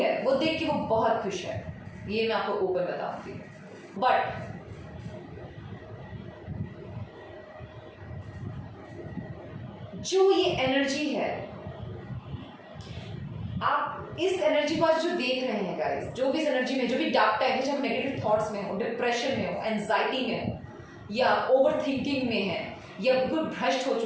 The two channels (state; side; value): identical; both; correlation 1.00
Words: वो देख के वो बहुत खुश है, ये मैं आपको ओपन बताऊंगी। बट जो ये एनर्जी है, आप इस एनर्जी को आज जो देख रहे हैं गाइस, जो भी इस एनर्जी में, जो भी डार्क टाइम है, चाहे नेगेटिव थॉट्स में हो, डिप्रेशन में हो, एंजाइटी में हो, या ओवर थिंकिंग में है, या बिल्कुल भ्रष्ट हो